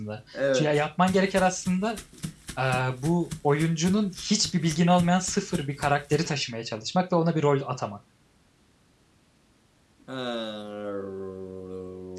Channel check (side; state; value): both; identical; correlation 1.00